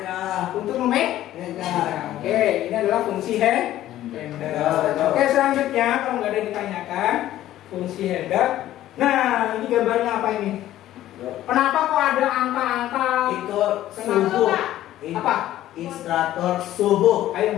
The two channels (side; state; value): right; quieter; 13.6 dB